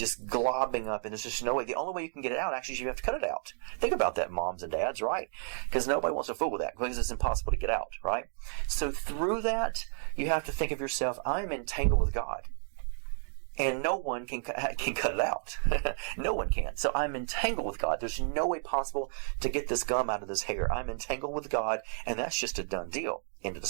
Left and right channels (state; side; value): silent; left; 57 dB below the other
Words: up, and there's just no way. The only way you can get it out, actually, is you have to cut it out. Think about that, moms and dads, right? Because nobody wants to fool with that, because it's impossible to get out, right? So through that, you have to think of yourself, I'm entangled with God. And no one can cut it out. No one can. So I'm entangled with God. There's no way possible to get this gum out of this hair. I'm entangled with God, and that's just a done deal. End of